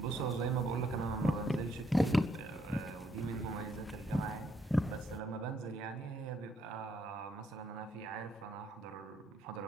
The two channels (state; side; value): normal; both; correlation 0.73